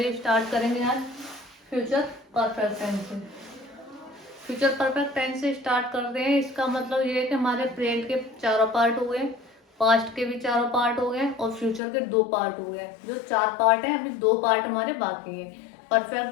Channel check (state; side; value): drops out; right; at 11.8 s